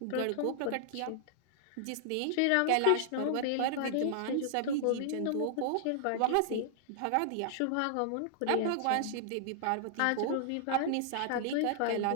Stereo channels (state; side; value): different; both; correlation -0.01